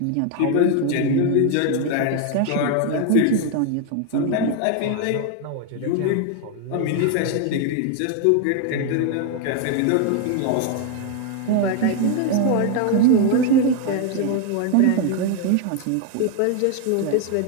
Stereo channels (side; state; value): both; different; correlation 0.01